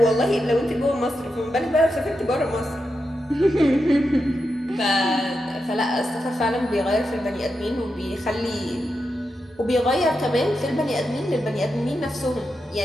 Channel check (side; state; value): both; normal; correlation 0.87